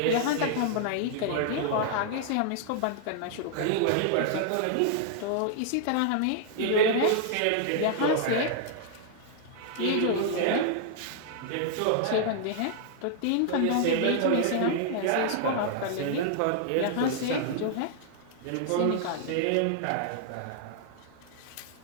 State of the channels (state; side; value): different; both; correlation -0.01